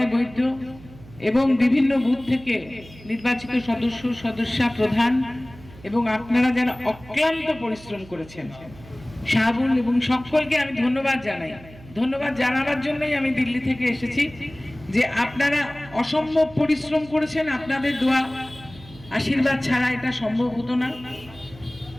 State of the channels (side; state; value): right; noise; hum, 20 dB below the sound